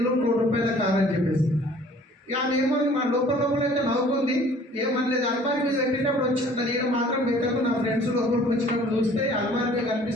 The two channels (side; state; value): both; normal; correlation 0.53